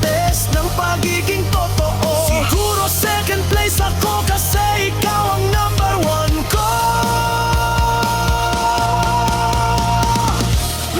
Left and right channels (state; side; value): identical; both; correlation 1.00